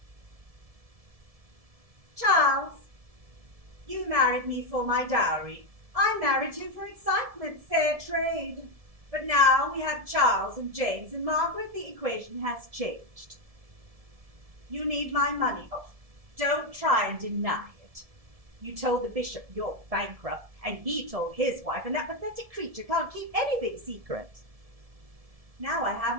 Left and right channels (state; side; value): late; left; 1.7 ms